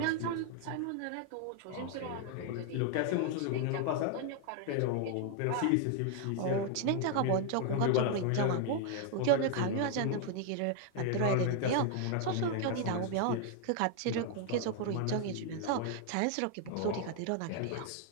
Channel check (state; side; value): different; both; correlation 0.00